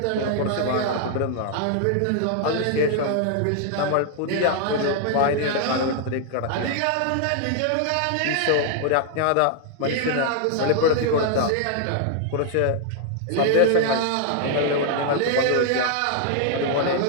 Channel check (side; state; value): both; different; correlation 0.00